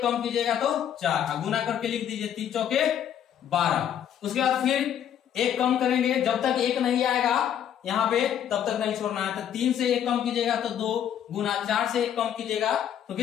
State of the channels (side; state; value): right; quieter; 9.7 dB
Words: कम कीजिएगा तो 4 गुना करके लिख दीजिए 3 चौके 12। उसके बाद फिर 1 कम करेंगे, जब तक 1 नहीं आएगा यहाँ पे तब तक नहीं छोड़ना है। तो 3 से 1 कम कीजिएगा तो 2 गुना, 4 से 1 कम कीजिएगा तो